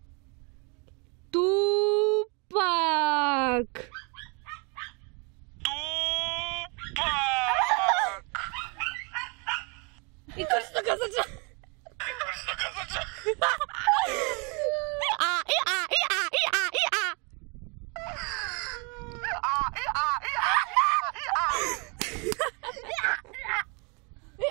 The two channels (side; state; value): left; quieter; 32.5 dB